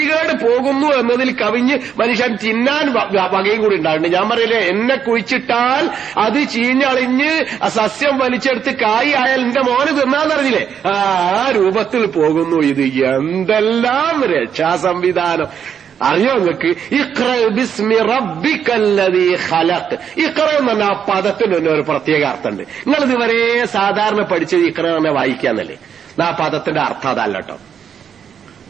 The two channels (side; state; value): left; quieter; 7.9 dB